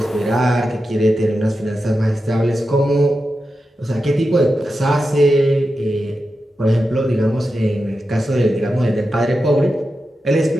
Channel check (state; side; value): normal; both; correlation 0.90